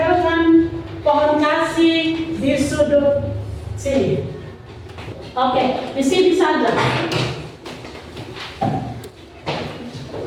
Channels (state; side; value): identical; both; correlation 1.00